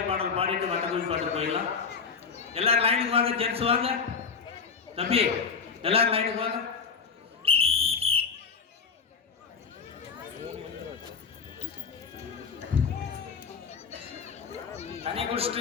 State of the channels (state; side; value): quieter; right; 5.7 dB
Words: பாடல் பாடிட்டு வட்டக்குழி பாட்டு போயிடலாம் எல்லாரும் லைனுக்கு வாங்க ஜென்ஸ் வாங்க தம்பி எல்லாரும் லைனுக்கு வாங்க தண்ணி